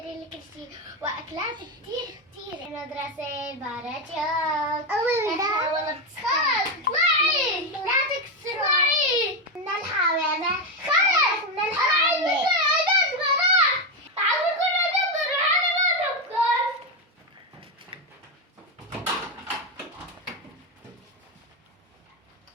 لي كل شيء واكلات كتير. المدرسة باراتشوك. والله خلص اطلعي. لا تكسري. من الحمامة. خلص من الحمامة.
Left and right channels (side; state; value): both; normal; correlation 0.09